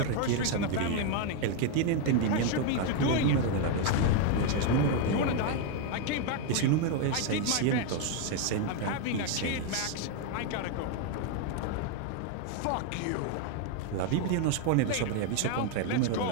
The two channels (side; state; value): both; different; correlation 0.01